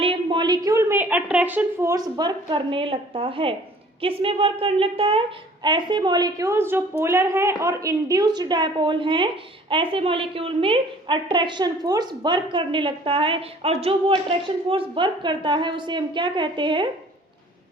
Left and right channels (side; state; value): both; normal; correlation 0.52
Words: मॉलिक्यूल में अट्रैक्शन फोर्स वर्क करने लगता है। किस में वर्क करने लगता है? ऐसे मॉलिक्यूल्स जो पोलर हैं और इंड्यूस्ड डायपोल हैं, ऐसे मॉलिक्यूल में अट्रैक्शन फोर्स वर्क करने लगता है, और जो वो अट्रैक्शन फोर्स वर्क करता है उसे हम क्या कहते हैं?